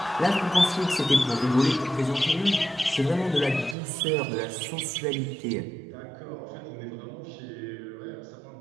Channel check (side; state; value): left; drops out; at 3.8 s